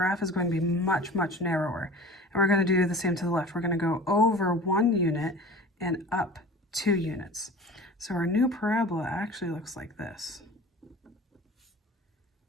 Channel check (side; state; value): both; normal; correlation 0.39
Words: is going to be much, much narrower. And we're going to do the same to the left. We're going to go over 1 unit and up 2 units. So our new parabola actually looks like this.